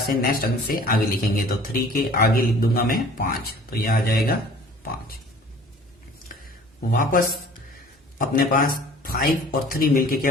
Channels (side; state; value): both; normal; correlation 0.48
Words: नेक्स्ट अंक से आगे लिखेंगे। तो 3 के आगे लिख दूंगा मैं 5, तो यह आ जाएगा 5। वापस अपने पास 5 और 3 मिलके